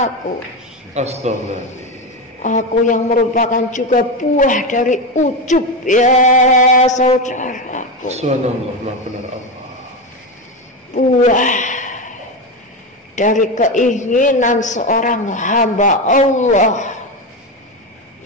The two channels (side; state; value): both; normal; correlation 0.15